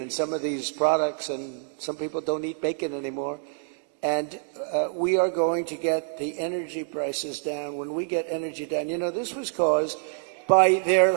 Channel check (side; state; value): left; silent; digital silence